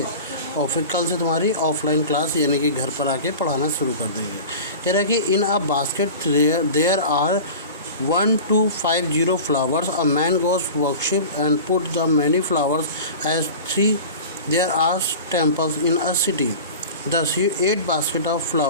और फिर कल से तुम्हारी ऑफलाइन क्लास यानी कि घर पर आके पढ़ाना शुरू कर देंगे। कह रहा है कि in a basket there are 1 to 50 flowers. A man goes worship and put the many flowers as 3. There are temples in a city. Thus 8 basket of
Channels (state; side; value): inverted; both; correlation -0.35